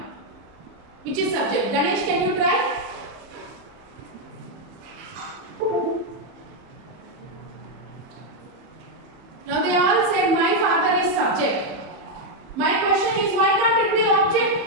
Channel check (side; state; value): left; late; 31 ms